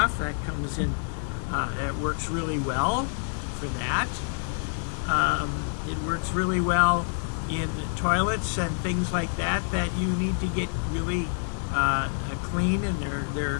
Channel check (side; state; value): right; silent; 60 dB below the other